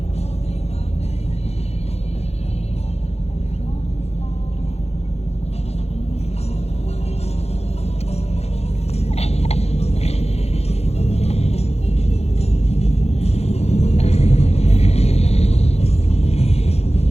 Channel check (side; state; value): right; late; 0.31 ms